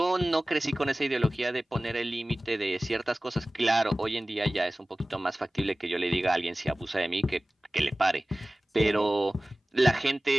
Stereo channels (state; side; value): normal; both; correlation 0.97